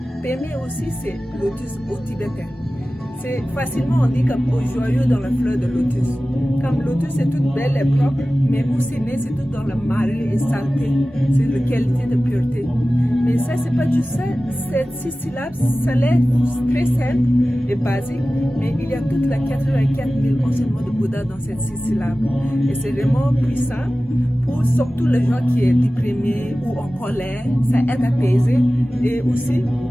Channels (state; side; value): normal; both; correlation 0.96